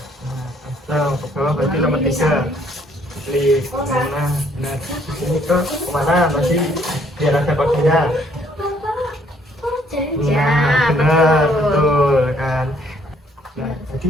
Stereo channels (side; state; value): both; normal; correlation 0.65